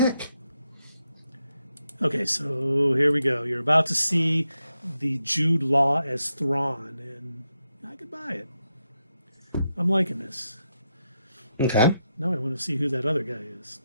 Okay, so here we go. You're about to see the Jude Law as Thrawn, and I could buy it. I'm liking this. Okay. Now I want to see who that other guy is.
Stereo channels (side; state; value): both; inverted; correlation -0.84